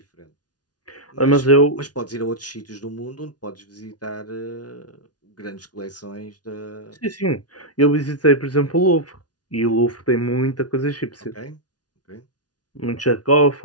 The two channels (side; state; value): right; late; 0.69 ms